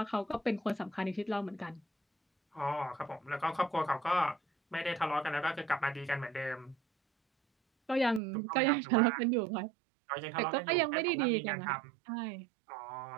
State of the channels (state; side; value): drops out; left; at 8.2 s